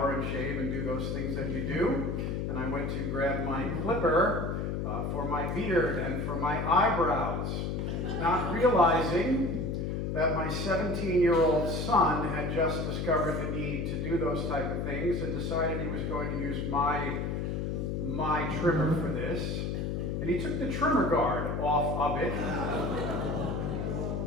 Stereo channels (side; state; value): left; noise; hum, 1 dB below the sound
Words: and shave and do those things that you do. And I went to grab my clipper for my beard and for my eyebrows, not realizing that my 17-year-old son had just discovered the need to do those type of things and decided he was going to use my trimmer for this. And he took the trimmer guard off of it.